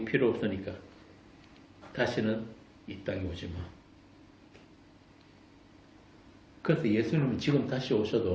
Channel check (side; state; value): both; identical; correlation 1.00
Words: 필요 없으니까 다시는 이 땅에 오지 마. 그래서 예수님은 지금 다시